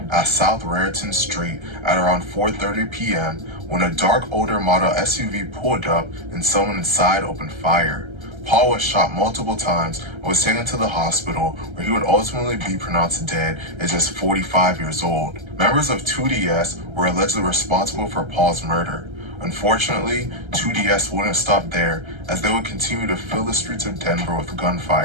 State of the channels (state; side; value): late; left; 1.3 ms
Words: at South Raritan Street at around 4:30 p.m. when a dark older model SUV pulled up and someone inside opened fire. Paul was shot multiple times and was taken to the hospital, where he would ultimately be pronounced dead at just 45 years old. Members of 2DS were allegedly responsible for Paul's murder. Unfortunately, 2DS wouldn't stop there, as they would continue to fill the streets of Denver with